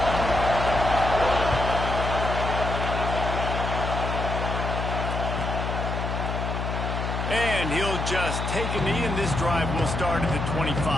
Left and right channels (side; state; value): left; noise; hum, 3 dB below the sound